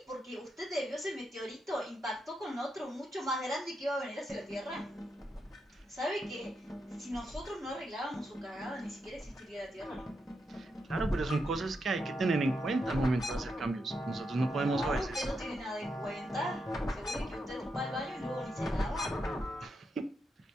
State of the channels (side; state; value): both; normal; correlation 0.83